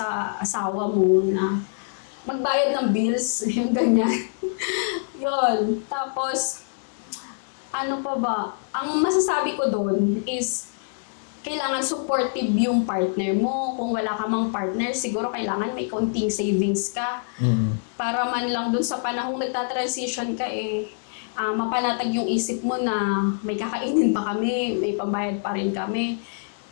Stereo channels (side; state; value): right; silent; 62 dB below the other